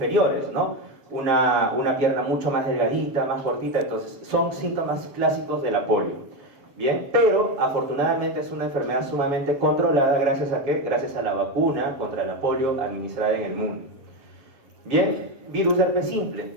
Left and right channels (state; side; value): late; left; 7.2 ms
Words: ¿no? Una pierna mucho más delgadita, más cortita. Entonces, son síntomas clásicos de la polio. Bien, pero afortunadamente es una enfermedad sumamente controlada. ¿Gracias a qué? Gracias a la vacuna contra la polio administrada en el mundo. Bien, virus de herpes simple.